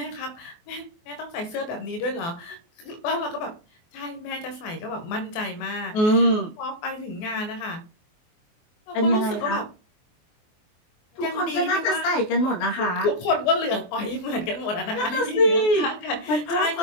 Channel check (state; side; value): late; right; 24 ms